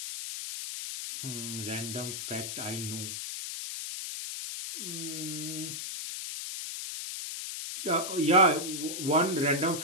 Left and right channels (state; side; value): noise; left; hiss, 5 dB below the sound